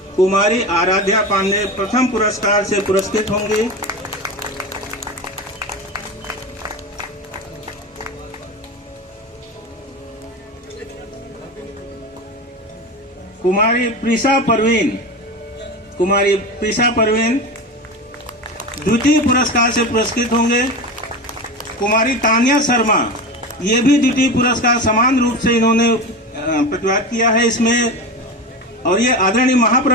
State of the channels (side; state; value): both; normal; correlation 0.25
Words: कुमारी आराध्या पांडे प्रथम पुरस्कार से पुरस्कृत होंगी। कुमारी प्रिसा परवीन द्वितीय पुरस्कार से पुरस्कृत होंगे। कुमारी तानिया शर्मा, ये भी द्वितीय पुरस्कार समान रूप से इन्होंने प्रतिभाग किया है इसमें, और ये आदरणीय